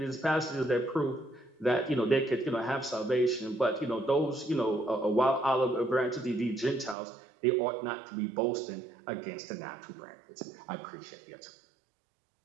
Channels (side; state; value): left; drops out; at 7.0 s